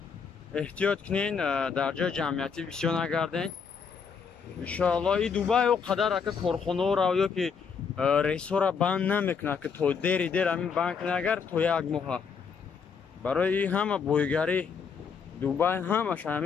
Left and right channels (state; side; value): quieter; right; 6.1 dB